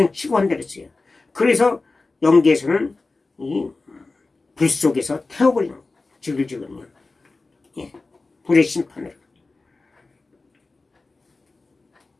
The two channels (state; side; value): quieter; right; 3.6 dB